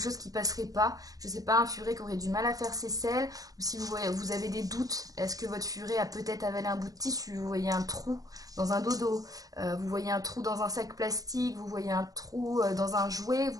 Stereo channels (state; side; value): late; left; 0.17 ms